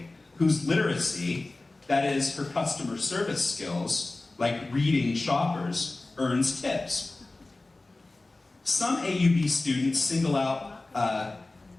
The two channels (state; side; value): quieter; right; 3.1 dB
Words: whose literacy, that is, her customer service skills, like reading shoppers, earns tips. Some AUB students single out